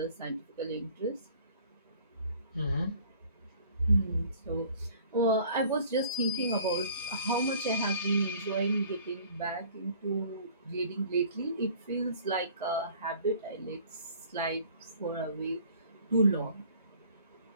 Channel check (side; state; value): both; inverted; correlation -0.52